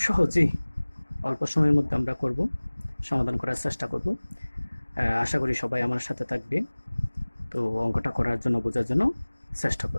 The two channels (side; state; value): both; inverted; correlation -1.00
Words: সহজেই অল্প সময়ের মধ্যে আমরা করব, সমাধান করার চেষ্টা করব। আশা করি সবাই আমার সাথে থাকবে, তো অঙ্কটা করার জন্য, বোঝার জন্য চেষ্টা